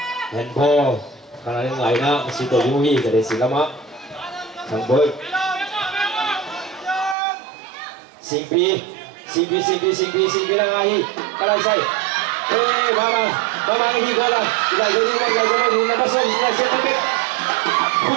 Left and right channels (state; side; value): drops out; left; at 7.2 s